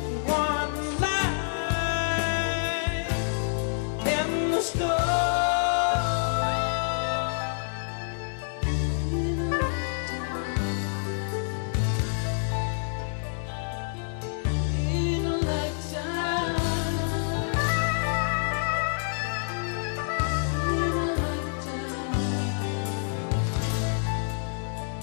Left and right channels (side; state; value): right; silent; 60 dB below the other